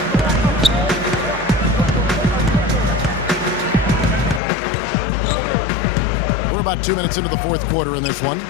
We're about 2 minutes into the fourth quarter in this one.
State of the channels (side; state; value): right; drops out; at 4.4 s